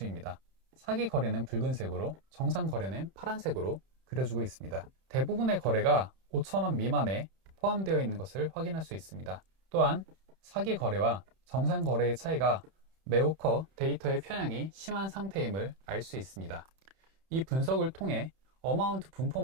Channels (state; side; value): late; left; 31 ms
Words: 사기 거래는 붉은색으로, 정상 거래는 파란색으로 그려주고 있습니다. 대부분의 거래가 5,000원 미만에 포함되어 있는 것을 확인할 수 있습니다. 또한 사기 거래와 정상 거래의 차이가 매우 커 데이터의 편향이 심한 상태임을 알 수 있습니다. 이 분석을 통해 어마운트